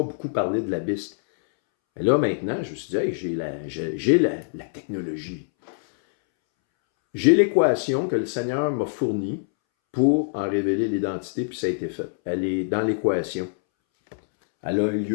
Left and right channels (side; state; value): right; silent; 62 dB below the other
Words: beaucoup parlé de l'abysse. Mais là, maintenant, je me suis dit, hey, j'ai la technologie. J'ai l'équation que le Seigneur m'a fournie pour en révéler l'identité, puis ça a été fait. Elle est dans l'équation. Elle a eu